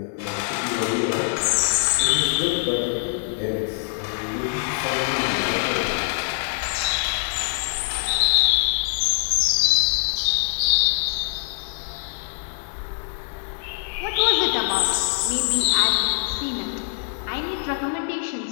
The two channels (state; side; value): silent; right; digital silence